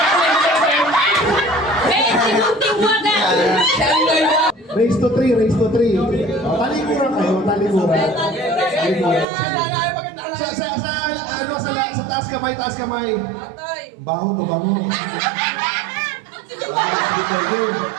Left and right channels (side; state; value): left; drops out; at 9.2 s